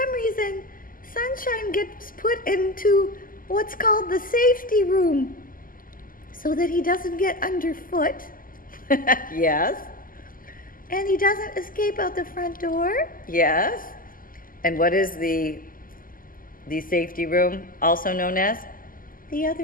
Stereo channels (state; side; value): late; right; 0.41 ms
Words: reason, Sunshine gets put into what's called the safety room, so that he doesn't get underfoot. Yes. And he doesn't escape out the front door. Yes. And what is the safety room also known as? The